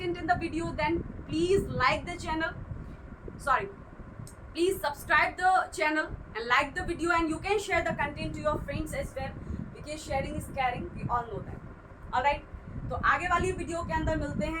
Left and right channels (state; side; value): identical; both; correlation 1.00